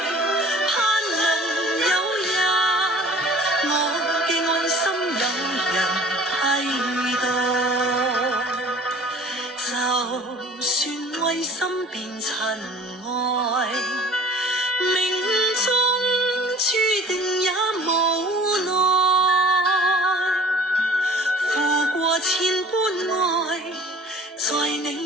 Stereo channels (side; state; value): both; normal; correlation 0.46